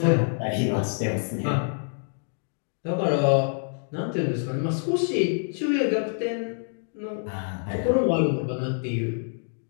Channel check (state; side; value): silent; right; digital silence